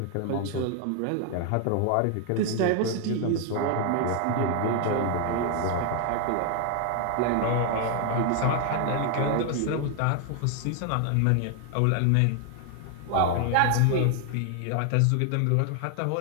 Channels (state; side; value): different; both; correlation 0.00